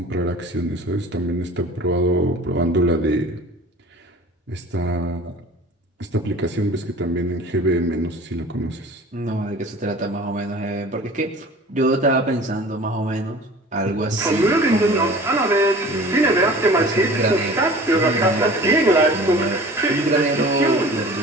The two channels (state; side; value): normal; both; correlation 0.43